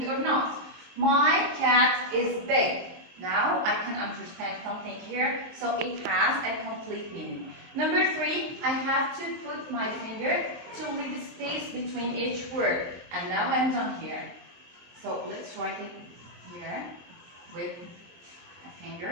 or not. My cat is big. Now I can understand something here, so it has a complete meaning. Number 3, I have to put my finger to leave space between each word. And now I'm done here. So let's write it here with a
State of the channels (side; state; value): left; late; 23 ms